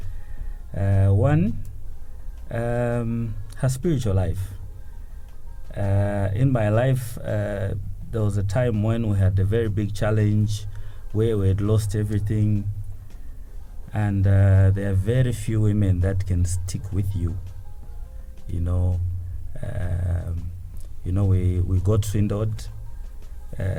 One, her spiritual life. In my life, there was a time when we had a very big challenge where we had lost everything, and there are very few women that can stick with you. We got swindled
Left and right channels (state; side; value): identical; both; correlation 1.00